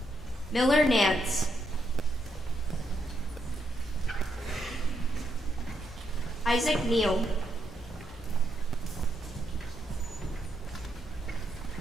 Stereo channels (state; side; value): normal; both; correlation 0.79